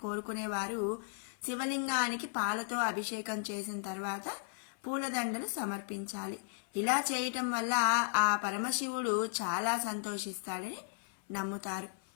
శివలింగానికి పాలతో అభిషేకం చేసిన తర్వాత పూలదండలు సమర్పించాలి. ఇలా చేయటం వల్ల ఆ పరమశివుడు చాలా సంతోషిస్తాడని నమ్ముతారు.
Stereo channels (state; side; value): silent; right; 54 dB below the other